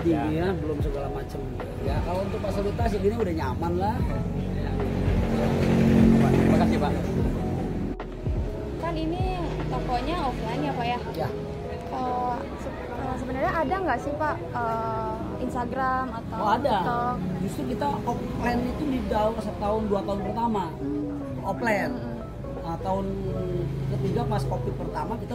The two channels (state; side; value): identical; both; correlation 1.00